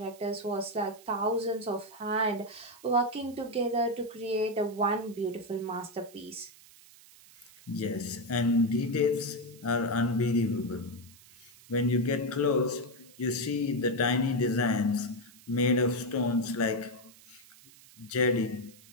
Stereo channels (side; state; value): right; noise; hiss, 23 dB below the sound